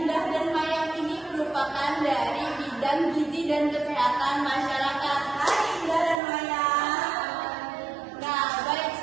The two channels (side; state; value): left; drops out; at 6.2 s